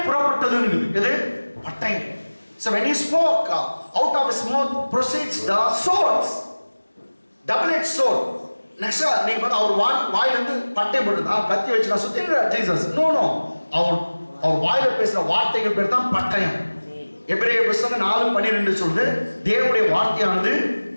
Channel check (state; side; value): inverted; both; correlation -1.00